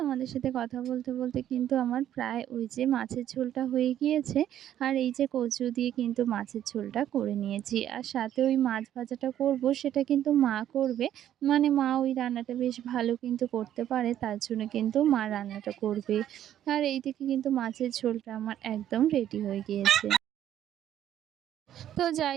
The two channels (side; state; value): left; quieter; 11.2 dB